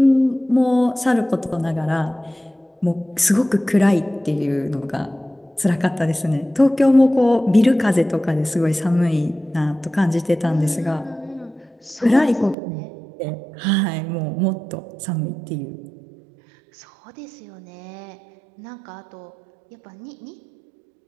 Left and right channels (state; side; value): drops out; left; at 12.6 s